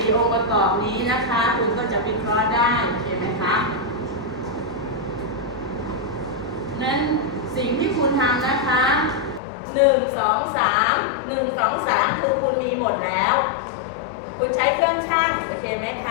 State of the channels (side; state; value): right; drops out; at 9.4 s